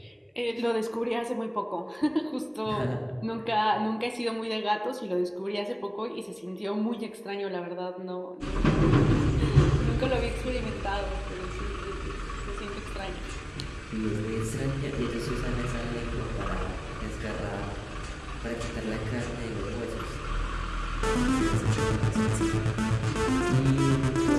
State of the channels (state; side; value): identical; both; correlation 1.00